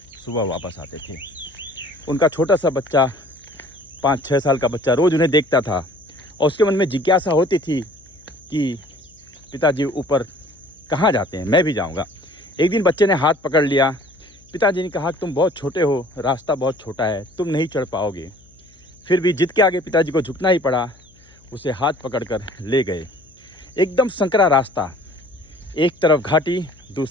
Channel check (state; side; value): noise; left; hum, 28 dB below the sound